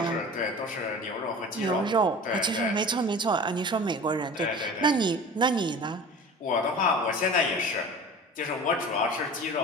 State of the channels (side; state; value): both; normal; correlation 0.39